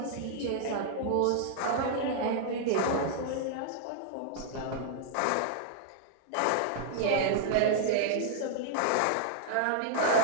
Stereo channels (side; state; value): both; different; correlation 0.00